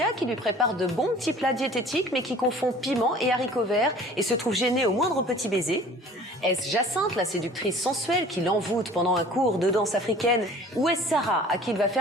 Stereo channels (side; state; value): both; normal; correlation 0.48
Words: qui lui prépare de bons petits plats diététiques, mais qui confond piment et haricots verts, et se trouve gênée au moindre petit baiser? Est-ce Jacinthe, la séductrice sensuelle, qui l'envoûte pendant un cours de danse africaine? Ou est-ce Sarah, à qui il va